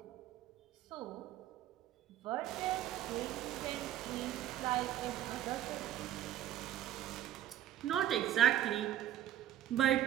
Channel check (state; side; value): quieter; left; 12.0 dB